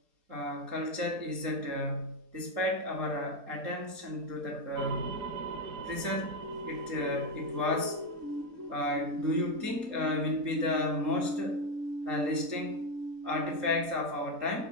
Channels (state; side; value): late; left; 3.8 ms